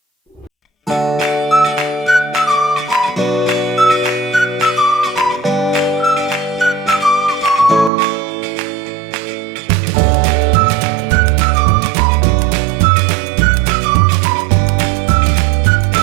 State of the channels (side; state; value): left; drops out; at 7.9 s